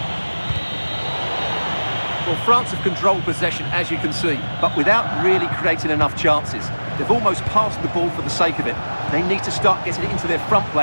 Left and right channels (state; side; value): inverted; both; correlation -1.00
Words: Well, France have controlled possession, as you can see, but without really creating enough chances. They've almost passed the ball for the sake of it. They need to start getting it into their front